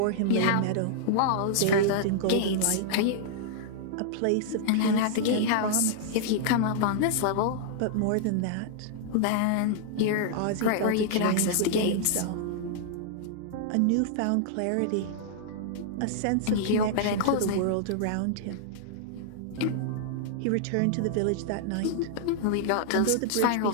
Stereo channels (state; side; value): different; both; correlation -0.01